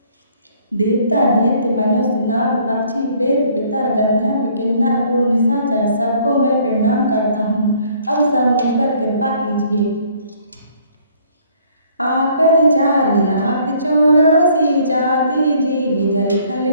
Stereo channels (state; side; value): inverted; both; correlation -0.61